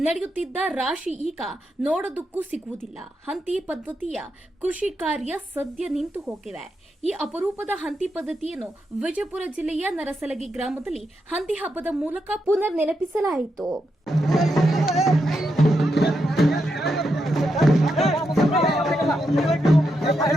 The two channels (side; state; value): both; normal; correlation 0.84